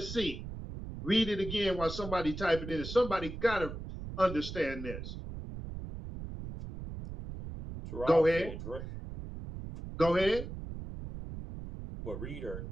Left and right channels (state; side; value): noise; right; rumble, 9 dB below the sound